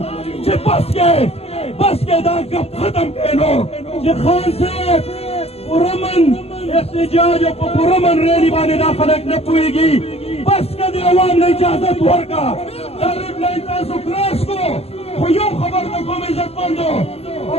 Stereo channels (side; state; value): right; late; 0.29 ms